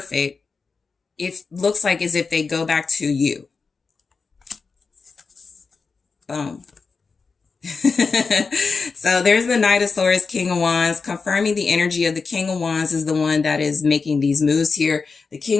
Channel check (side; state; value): right; quieter; 4.7 dB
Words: it looks like as if they go back to you. Boom. So there's the Knight of Swords, King of Wands, confirming the energy of the King of Wands is the one that is making these moves here. The